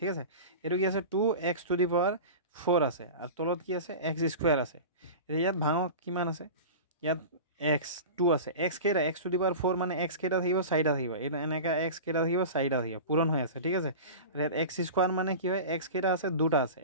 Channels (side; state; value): both; inverted; correlation -0.32